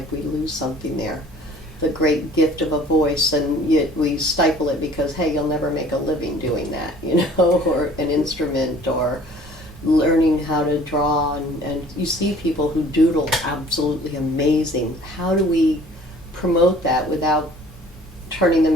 we lose something there. The great gift of a voice, and yet we stifle it because, hey, you'll never make a living doing that, or an instrument, or learning how to draw, and you see people who doodle absolutely amazing. How do we promote that without turning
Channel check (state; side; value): normal; both; correlation 0.52